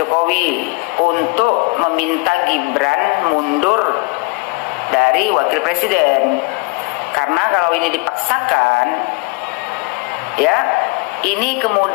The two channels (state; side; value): quieter; right; 27.8 dB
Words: untuk meminta Gibran mundur dari wakil presiden. Karena kalau ini dipaksakan, ya, ini